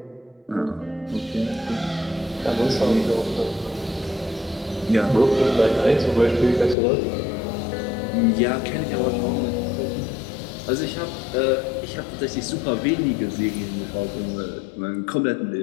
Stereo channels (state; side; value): drops out; right; at 6.8 s